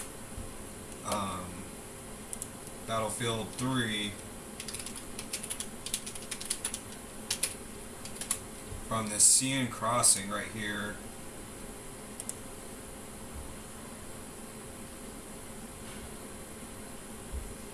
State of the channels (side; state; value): both; identical; correlation 1.00